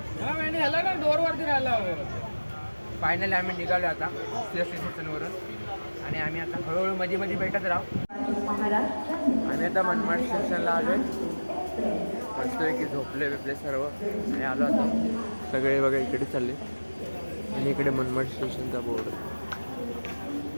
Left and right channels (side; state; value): both; inverted; correlation -1.00